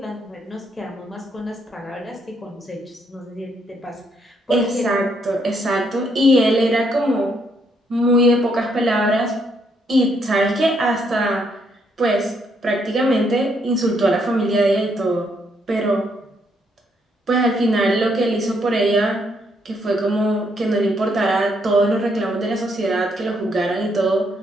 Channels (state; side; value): normal; both; correlation 0.73